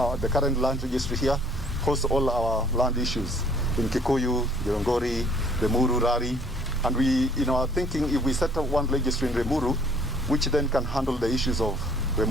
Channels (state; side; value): normal; both; correlation 0.58